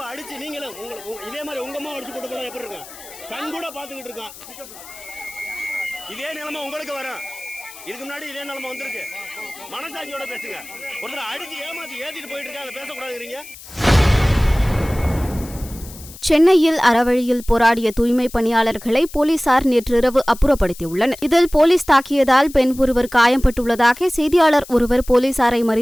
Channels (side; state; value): left; noise; hiss, 17 dB below the sound